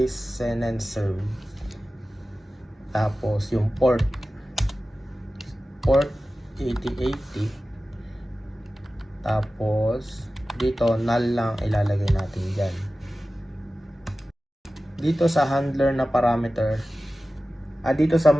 and serve. Tapos yung port 8080. Tapos dito null lang ilalagay natin dyan. Dito sa handler na parameter, dito sa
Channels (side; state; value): both; normal; correlation 0.95